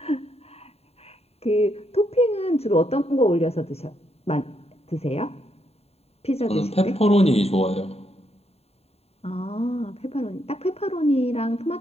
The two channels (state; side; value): late; right; 0.30 ms